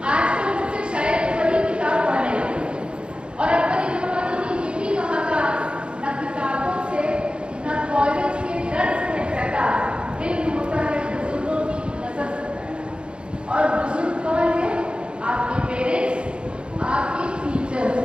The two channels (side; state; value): left; late; 0.055 ms